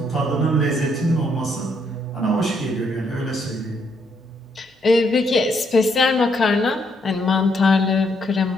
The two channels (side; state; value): both; normal; correlation 0.73